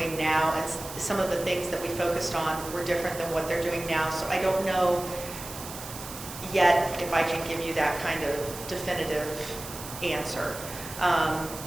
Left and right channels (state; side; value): noise; right; hiss, 12 dB below the sound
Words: now. And some of the things that we focused on were different than what they're doing now. So I don't know yet if I can give you that kind of definitive answer.